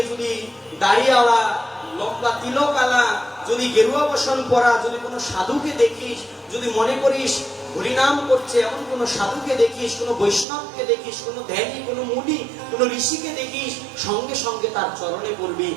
যদি দাড়িওয়ালা, লম্বা তিলকালা, যদি গেরুয়া বসন পরা যদি কোনো সাধুকে দেখিস, যদি মনে করিস হরিনাম করছে এমন কোন সাধুকে দেখিস, কোন বৈষ্ণবকে দেখিস, কোন ধ্যানী, কোন মুনি, কোন ঋষিকে দেখিস, সঙ্গে সঙ্গে তার চরণে পড়বি।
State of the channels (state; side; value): drops out; left; at 10.5 s